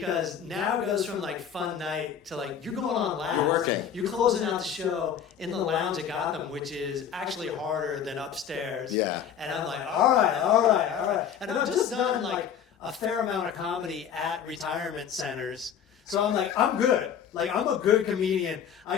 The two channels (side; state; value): right; quieter; 8.4 dB